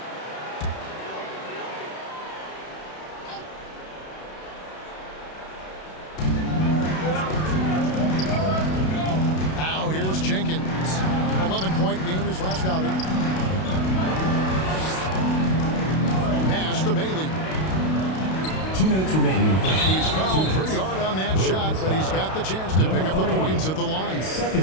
Now here's Jenkins. 11-point game his last outing. Pass to Bailey. 2 minutes remaining. And he's fouled pretty hard on that shot, but he's got the chance to pick up the points at the line.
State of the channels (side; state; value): right; late; 32 ms